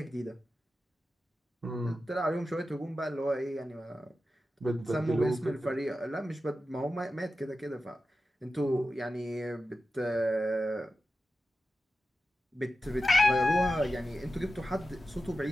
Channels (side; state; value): both; normal; correlation 0.93